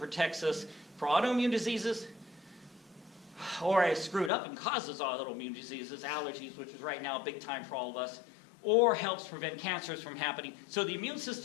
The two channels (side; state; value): right; drops out; at 4.3 s